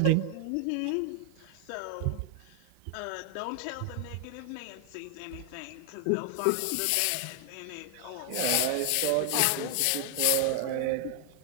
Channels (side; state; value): both; different; correlation 0.00